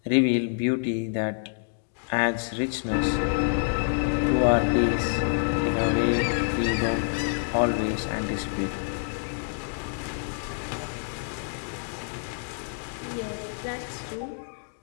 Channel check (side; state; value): right; silent; 58 dB below the other